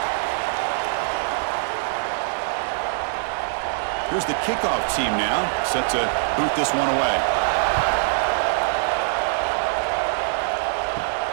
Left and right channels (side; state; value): left; silent; digital silence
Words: Here's the kickoff team now, set to boot this one away.